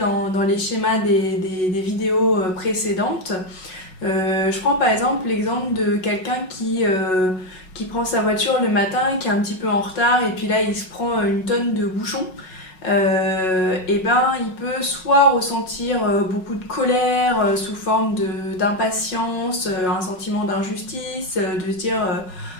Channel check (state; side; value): late; right; 5.4 ms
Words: les schémas des vidéos précédentes. Je prends par exemple l'exemple de quelqu'un qui prend sa voiture le matin, qui est un petit peu en retard, et puis là il se prend une tonne de bouchons. Il peut soit ressentir beaucoup de colère sous forme d'impatience, un sentiment d'injustice, de se dire